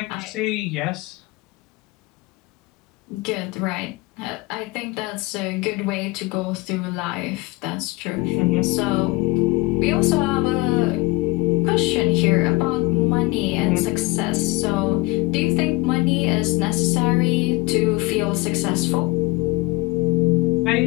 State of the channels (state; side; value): quieter; right; 22.6 dB